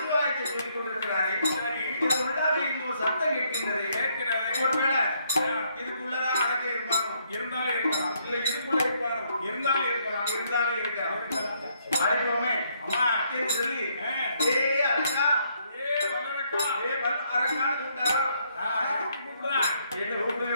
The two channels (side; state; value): both; inverted; correlation -0.71